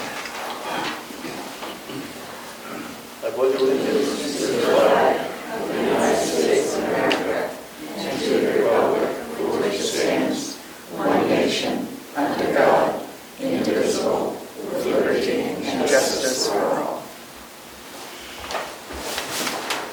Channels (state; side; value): identical; both; correlation 1.00